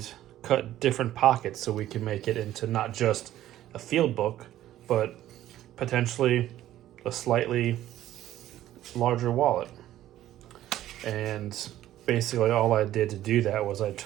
cut different pockets so we can make it into not just a field book, but potentially a slightly larger wallet. And basically all I did to do that was I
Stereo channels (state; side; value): quieter; left; 13.3 dB